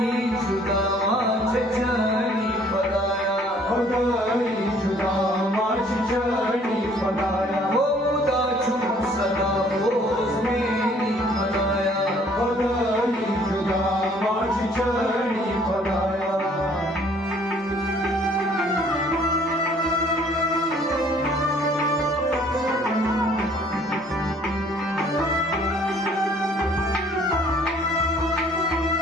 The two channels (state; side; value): normal; both; correlation 0.58